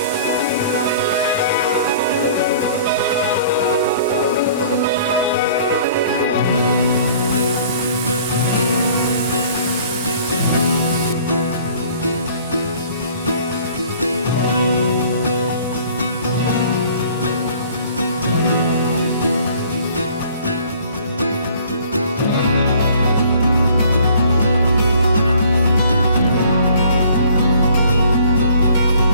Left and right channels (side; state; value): both; inverted; correlation -0.53